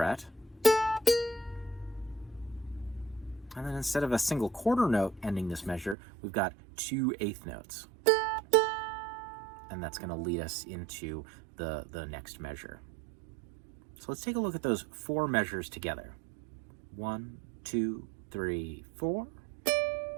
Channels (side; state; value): left; drops out; at 6.0 s